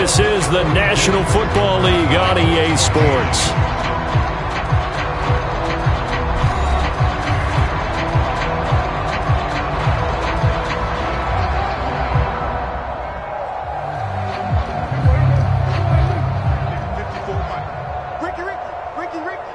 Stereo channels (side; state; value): both; identical; correlation 1.00